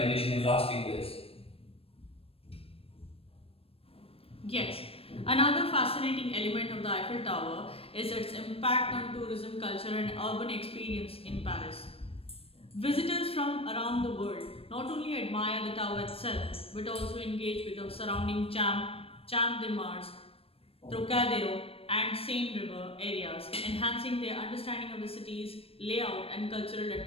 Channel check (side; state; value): right; late; 0.28 ms